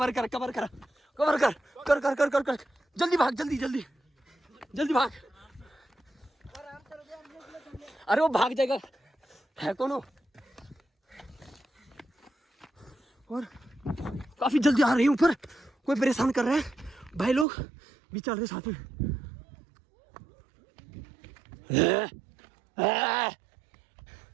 कर, कवर कर, कवर कर, कर कर कर कर कर, जल्दी भाग, जल्दी जल्दी जल्दी भाग। अरे वो भाग जाएगा, है कौन हो? और काफी जल्दी आ रही हूँ, ऊपर कोई परेशान कर रहा है, भाई लोग भी चल रहे साथ में।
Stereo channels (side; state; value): left; drops out; at 17.4 s